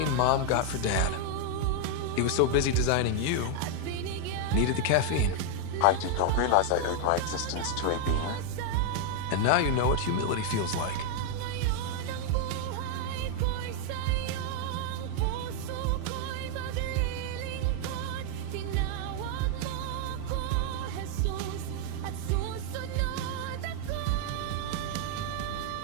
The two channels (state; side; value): different; both; correlation 0.00